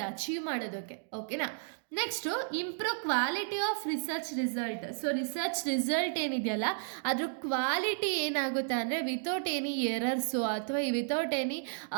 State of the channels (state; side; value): silent; left; digital silence